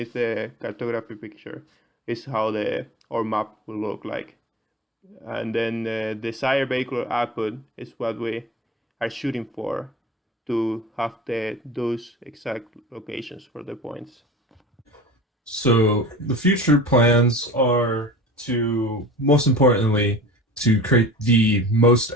the cartography picture is how our map will look like. And then the desired vehicular output is what we are shooting for, to have those exact locations for the points. So the future plans are to, most importantly, to create the most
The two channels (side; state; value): both; normal; correlation 0.39